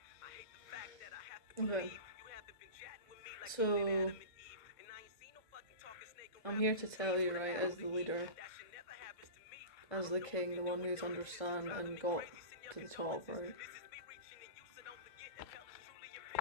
Okay. So, I'm here to tell you, right, as the leader, as the king, the one who's understand and got to the top, right?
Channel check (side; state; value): right; late; 1.5 ms